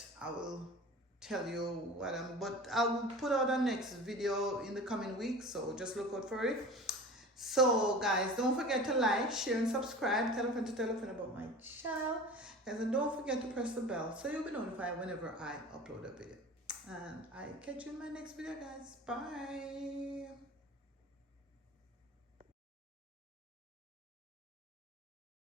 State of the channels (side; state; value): both; normal; correlation 0.37